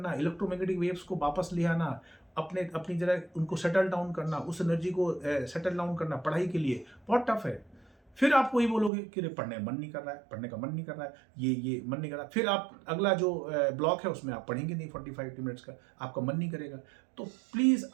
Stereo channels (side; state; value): left; drops out; at 8.9 s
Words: इलेक्ट्रोमैग्नेटिक वेव्स को वापस ले आना, अपनी जगह उनको सेटल डाउन करना, उस एनर्जी को सेटल डाउन करना पढ़ाई के लिए बहुत टफ है। फिर आप वही बोलोगे कि पढ़ने का मन नहीं कर रहा है, पढ़ने का मन नहीं कर रहा है, ये मन नहीं कर रहा। फिर आप अगला जो ब्लॉक है उसमें आप पढ़ेंगे नहीं, 45 मिनट्स का आपका मन नहीं करेगा। तो प्लीज